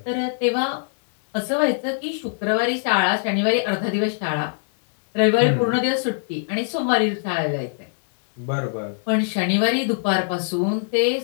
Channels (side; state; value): right; silent; digital silence